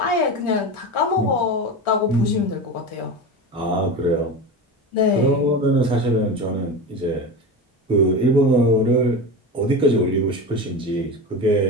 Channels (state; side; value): normal; both; correlation 0.25